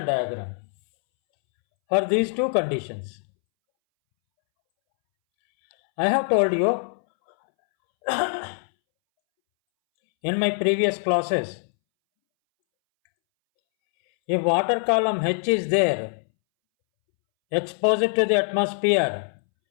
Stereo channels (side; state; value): right; silent; 63 dB below the other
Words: diagram for these two conditions. I have told you in my previous classes, if water column H is there, exposed to the atmosphere,